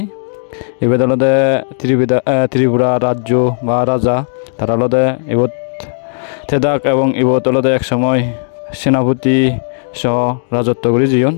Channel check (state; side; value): silent; right; digital silence